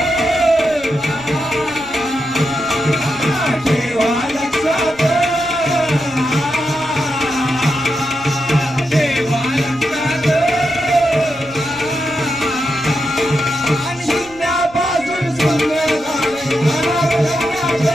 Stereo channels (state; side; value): noise; right; rumble, 22 dB below the sound